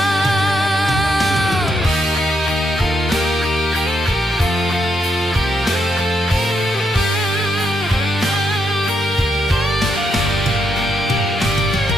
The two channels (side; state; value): both; normal; correlation 0.78